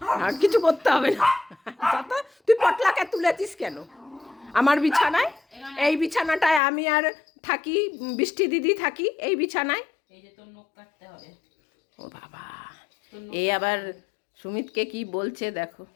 আর কিছু করতে হবে না। দাদা তুই পটলাকে তুলেছিস কেন আমার বিছানায়? এই বিছানাটায় আমি আর থাকি, বৃষ্টি দিদি থাকি এই বিছানায়। এই যে তোর নখ কাটতে হবে। ও বাবা, তোর নখ এই আবার সুমিতকে কি বলছে দেখো।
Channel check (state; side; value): drops out; right; at 6.6 s